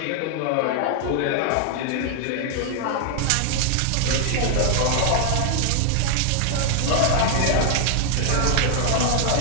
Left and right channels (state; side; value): different; both; correlation 0.00